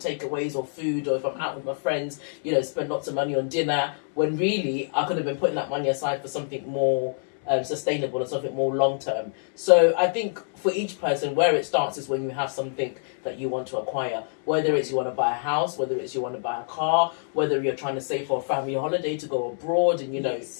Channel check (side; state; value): right; silent; digital silence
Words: or food, or if I'm out with my friends, you know, spend lots of money on dinner, when really I could have been putting that money aside for something more sustainable and something more long term. So I think for each person, where it starts is when you have something that you want to acquire, whether it's you want to buy a house, whether it's you want to buy a car, whether you're trying to save for a family holiday to go abroad, and you know,